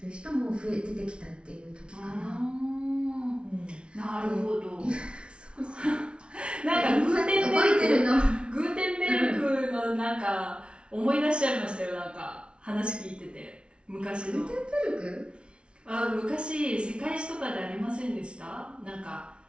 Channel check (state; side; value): late; left; 0.058 ms